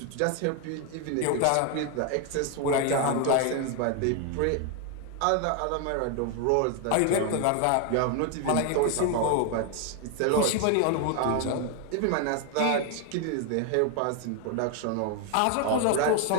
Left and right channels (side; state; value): both; different; correlation 0.01